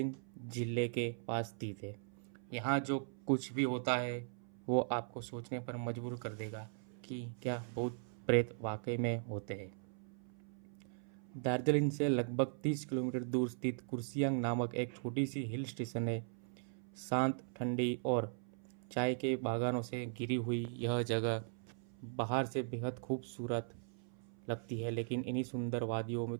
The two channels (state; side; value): silent; left; 52 dB below the other